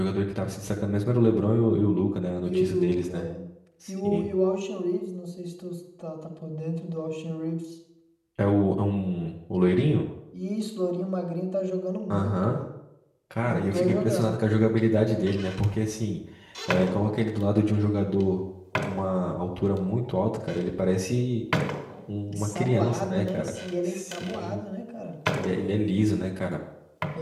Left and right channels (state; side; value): identical; both; correlation 1.00